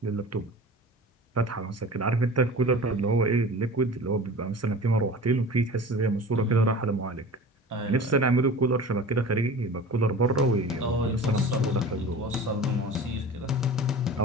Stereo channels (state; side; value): normal; both; correlation 0.37